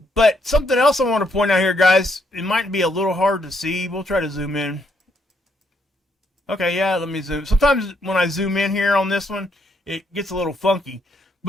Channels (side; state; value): both; normal; correlation 0.74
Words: something else I want to point out here, guys. It might be a little hard to see. We'll try to zoom in. Okay, yeah, let me zoom. Sometimes when I zoom in here on this one, it gets a little funky.